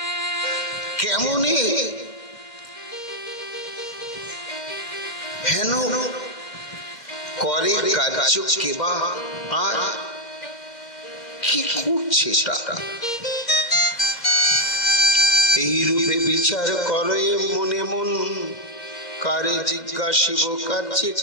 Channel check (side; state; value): right; late; 2.1 ms